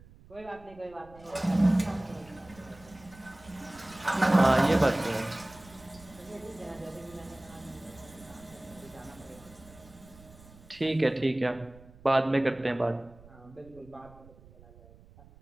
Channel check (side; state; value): right; noise; rumble, 23 dB below the sound